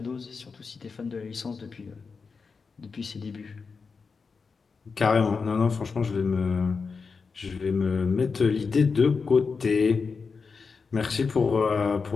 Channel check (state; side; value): quieter; right; 5.0 dB